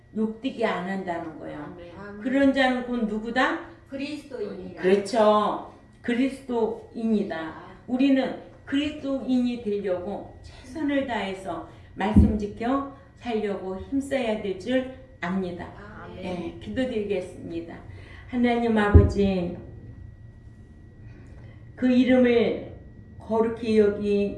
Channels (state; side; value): identical; both; correlation 1.00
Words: 욕되게 안 한다는 거예요. 아멘. 그런 자는 곧 누구다? 그리스도인이라. 그렇죠. 그리스도인이다. 우리는 그리스도인이 되려고 최선을 다해서 말씀 지켜 살려고 힘써야 될 줄 압니다. 아멘. 네, 기도드리겠습니다. 하나님 아버지, 그 이름을 거룩히